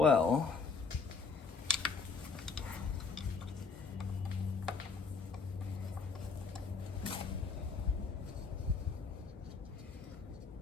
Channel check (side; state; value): right; quieter; 4.8 dB